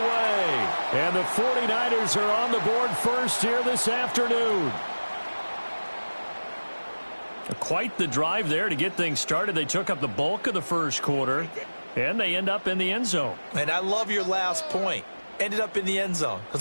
And the 49ers are on the board first here this afternoon. Quite the drive there to get things started. They took up the bulk of the first quarter, and they end up in the end zone. And I love your last point. Ended up in the end zone.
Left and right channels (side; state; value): both; inverted; correlation -1.00